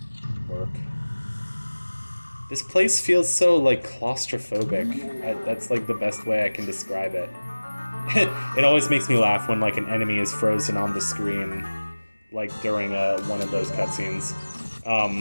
work. This place feels so, like, claustrophobic. That's, like, the best way I can describe it. It always makes me laugh when, like, an enemy is frozen on the screen, like, during one of those cutscenes.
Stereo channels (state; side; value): inverted; both; correlation -1.00